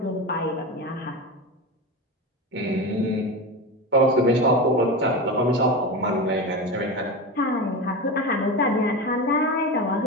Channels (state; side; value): normal; both; correlation 0.23